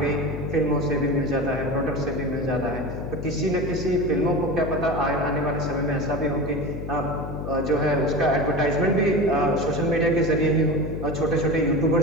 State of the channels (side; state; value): left; noise; hum, 7 dB below the sound